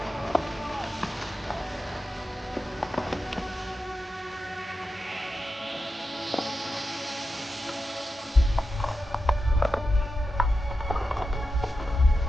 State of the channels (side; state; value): both; normal; correlation 0.90